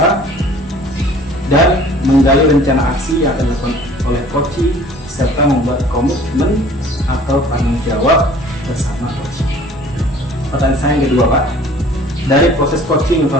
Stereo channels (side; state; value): both; normal; correlation 0.51